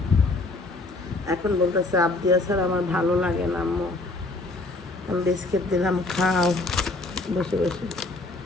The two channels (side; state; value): right; quieter; 3.1 dB